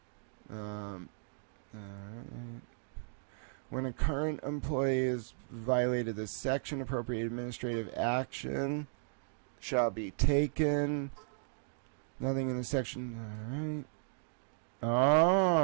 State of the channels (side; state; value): left; silent; digital silence